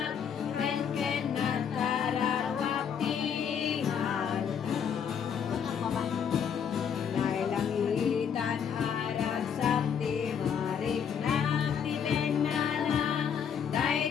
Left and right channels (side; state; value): right; quieter; 7.6 dB